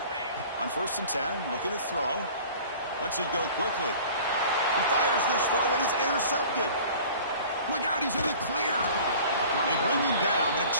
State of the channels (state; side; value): inverted; both; correlation -0.45